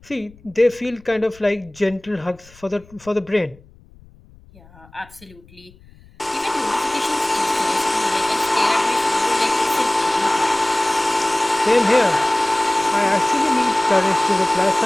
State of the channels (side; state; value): left; noise; rumble, 25 dB below the sound